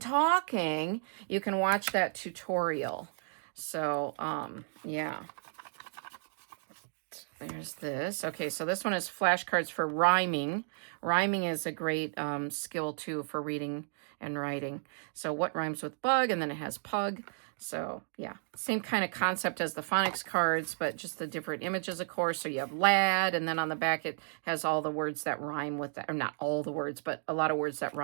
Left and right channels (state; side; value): silent; left; digital silence